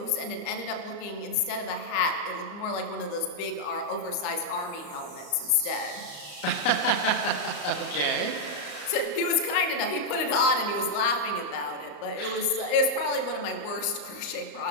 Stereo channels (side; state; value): right; late; 34 ms